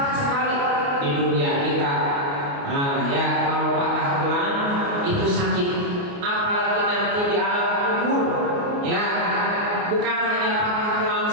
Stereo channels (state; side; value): late; left; 29 ms